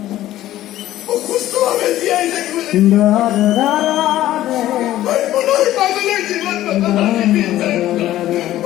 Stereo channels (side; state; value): right; quieter; 14.1 dB